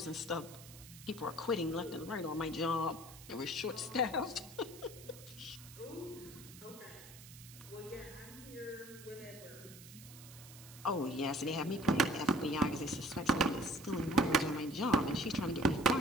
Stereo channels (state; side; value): noise; right; hiss, 17 dB below the sound